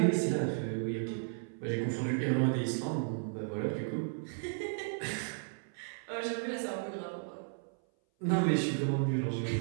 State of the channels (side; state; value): left; silent; 55 dB below the other